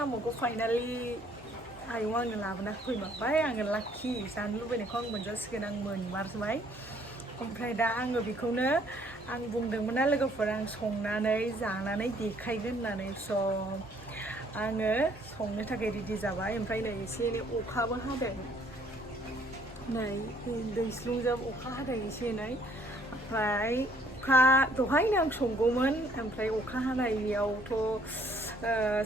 फाइनालि आयं आंनो लाबोना फैमारबाय। आङो लाखि जानो लुबैनायखौ आं मोनजासिगोन, आं मोनमारबाय। ओमफ्राय दा आङो बेखौनो आं बुंदोंमोन ना लोगोफोर आं संनानै जानानै देखायगोन होननानै। स' आङो संनो थाखाय रेडि जाबाय। ओमफ्राय नै एसे एनै अखाबो हादों, नै दैस्लुंजों अखा हादों एसे एनै। ओमफ्राय अखा दहायनो आं संगौमोन, ओमफ्राय अखा हानायावथ'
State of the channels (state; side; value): normal; both; correlation 0.62